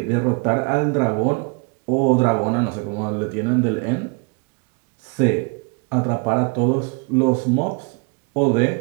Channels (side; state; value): left; quieter; 33.0 dB